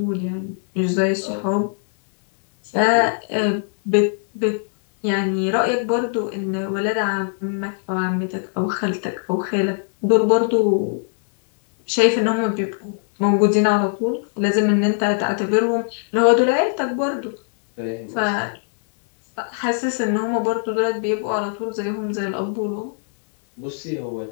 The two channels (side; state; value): right; silent; 65 dB below the other